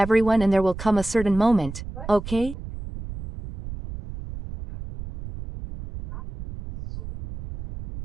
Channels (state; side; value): noise; right; rumble, 11 dB below the sound